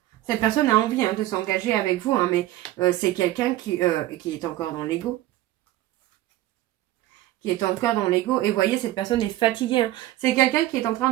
Cette personne a envie de s'engager avec vous, mais c'est quelqu'un qui est encore dans l'ego. Qui est encore dans l'ego. Et vous voyez, cette personne est fatiguée. C'est quelqu'un qui est en train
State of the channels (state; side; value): quieter; left; 15.5 dB